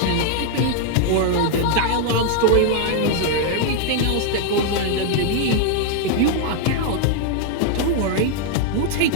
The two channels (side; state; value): both; different; correlation 0.00